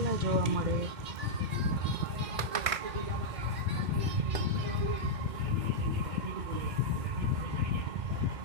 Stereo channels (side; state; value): left; late; 2.2 ms